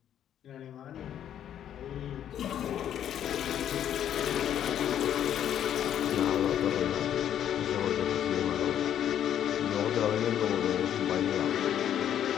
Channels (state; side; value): quieter; right; 10.2 dB